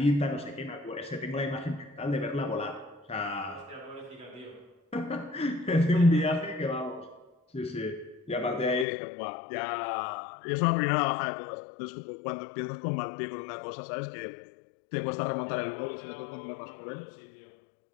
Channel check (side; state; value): right; drops out; at 8.8 s